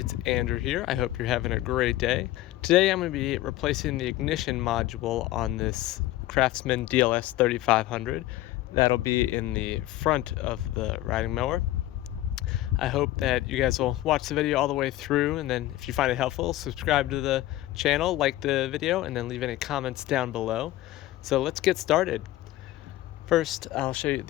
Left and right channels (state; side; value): quieter; right; 15.6 dB